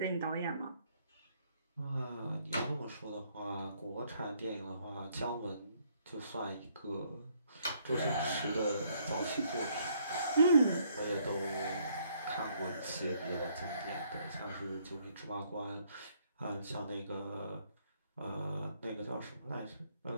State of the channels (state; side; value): inverted; both; correlation -0.68